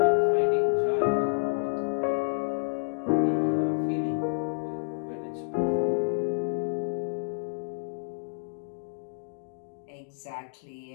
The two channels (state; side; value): silent; right; digital silence